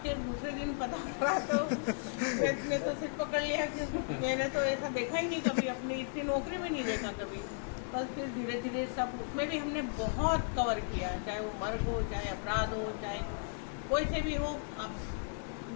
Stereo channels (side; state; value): right; silent; 54 dB below the other